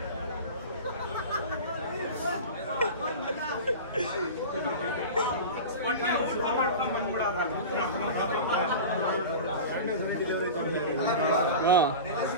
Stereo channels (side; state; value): both; inverted; correlation -0.31